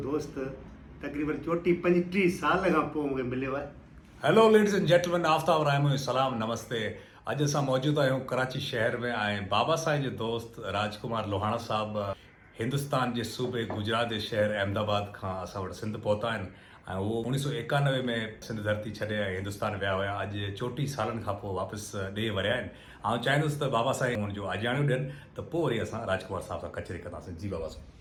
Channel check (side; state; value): both; identical; correlation 1.00